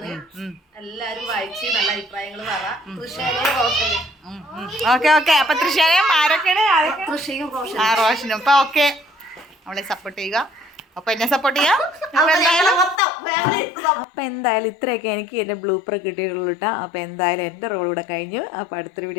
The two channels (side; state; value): right; drops out; at 13.0 s